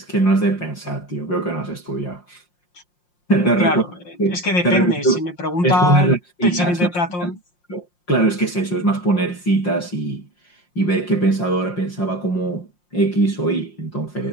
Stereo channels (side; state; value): right; late; 5.6 ms